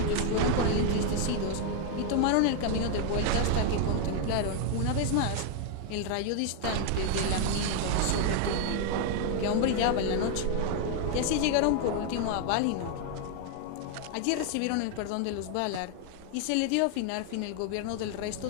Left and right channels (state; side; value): different; both; correlation 0.00